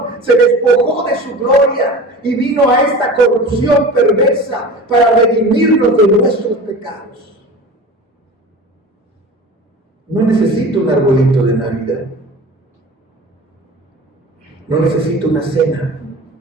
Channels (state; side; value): normal; both; correlation 0.36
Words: Se despojó de su gloria y vino a esta corrupción perversa para redimirnos de nuestros pecados. No necesito un arbolito de Navidad. No necesito una cena.